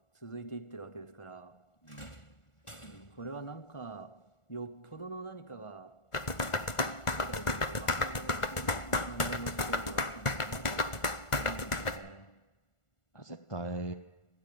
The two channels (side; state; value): right; late; 1.4 ms